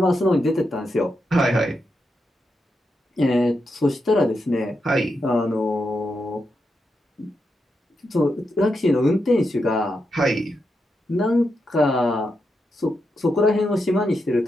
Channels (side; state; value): both; normal; correlation 0.85